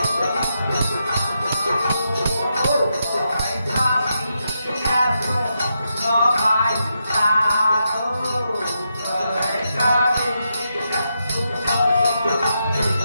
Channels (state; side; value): inverted; both; correlation -0.84